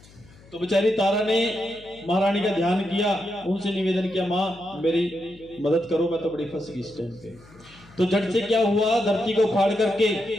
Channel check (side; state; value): left; noise; hum, 24 dB below the sound